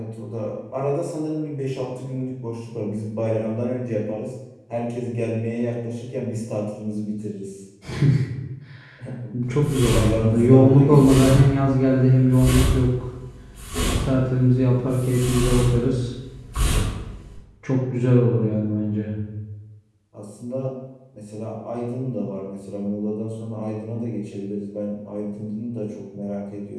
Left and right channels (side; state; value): both; identical; correlation 1.00